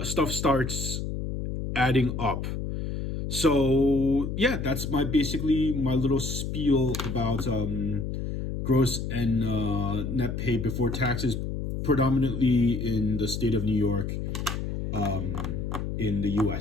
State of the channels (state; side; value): noise; left; hum, 3 dB below the sound